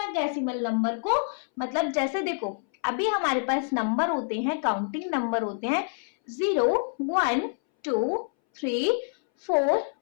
नंबर को. मतलब जैसे देखो अभी हमारे पास नंबर होते हैं, काउंटिंग नंबर होते हैं 0, 1, 2, 3, 4,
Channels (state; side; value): silent; right; 60 dB below the other